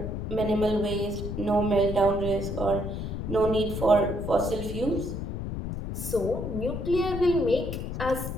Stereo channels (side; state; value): left; noise; rumble, 5 dB below the sound